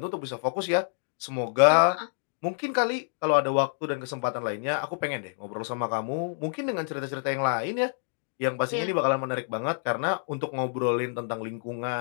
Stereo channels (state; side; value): silent; right; digital silence